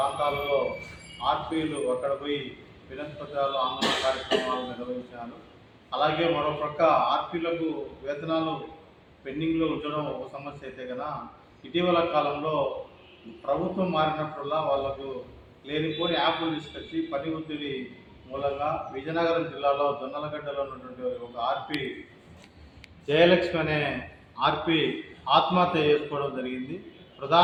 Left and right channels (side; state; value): both; identical; correlation 1.00